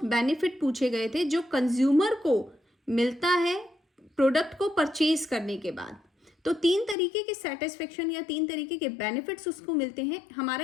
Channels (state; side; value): drops out; right; at 7.0 s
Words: बेनिफिट पूछे गए थे जो कंज्यूमर को मिलता है प्रोडक्ट को परचेज करने के बाद। तो 3 तरीके के सेटिस्फेक्शन या 3 तरीके के बेनिफिट्स उसको मिलते हैं।